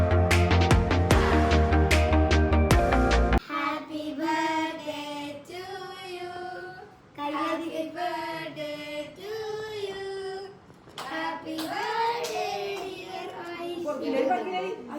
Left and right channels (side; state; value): both; identical; correlation 1.00